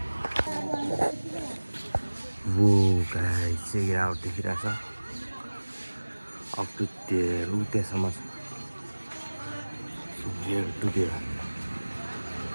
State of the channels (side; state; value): both; inverted; correlation -1.00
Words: वो गाइस चाहिँ गिरावट देखिरहेको छ अप टु त्यहाँसम्म छ टु देयर